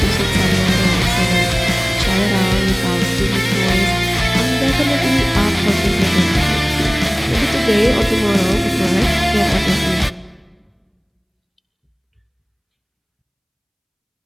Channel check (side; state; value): both; identical; correlation 1.00